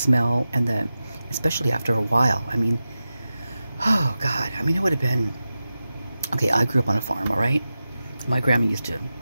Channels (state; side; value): inverted; both; correlation -0.94